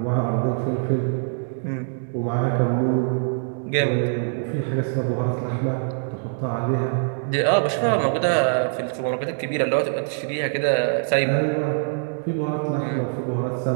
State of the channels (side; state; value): left; silent; digital silence